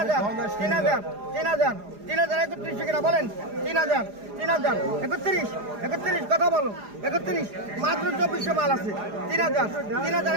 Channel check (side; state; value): left; late; 4.9 ms